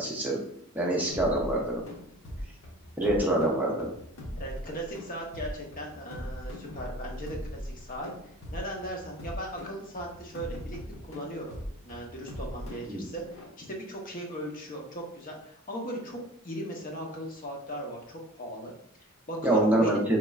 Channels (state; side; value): normal; both; correlation 0.42